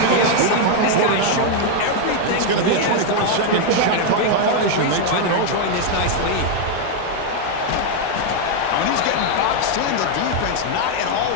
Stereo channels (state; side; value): different; both; correlation 0.00